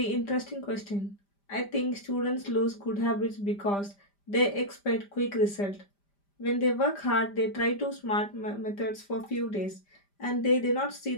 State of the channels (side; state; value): right; late; 5.0 ms